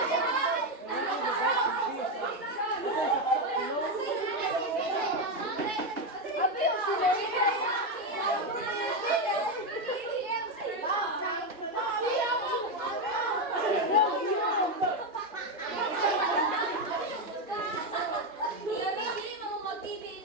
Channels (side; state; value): both; normal; correlation 0.08